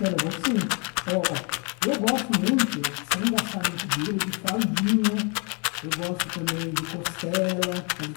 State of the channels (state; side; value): quieter; right; 34.2 dB